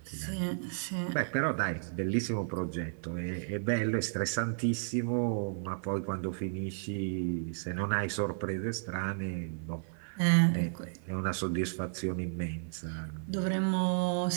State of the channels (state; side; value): silent; left; 56 dB below the other